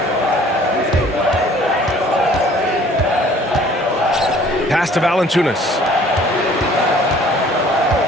Pass to Valanciunas.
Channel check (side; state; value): both; normal; correlation 0.54